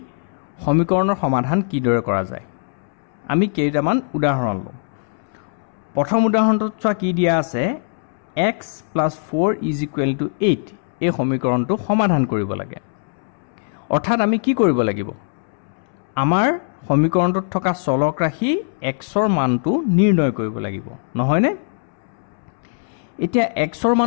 সমীকৰণৰ সমাধান কিদৰে কৰা যায় আমি কেইটামান উদাহৰণ লওঁ প্ৰথম উদাহৰণটোত চোৱা কি দিয়া আছে x + 4 = 8 এই সমীকৰণটো সমাধান কৰিব লাগে অৰ্থাৎ আমি কি কৰিব লাগিব আমাৰ সমীকৰণটোত থকা চলক ৰাশি x ৰ মানটো নিৰ্ণয় কৰিব লাগিব নহয়নে এতিয়া x ৰ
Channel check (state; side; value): silent; right; 65 dB below the other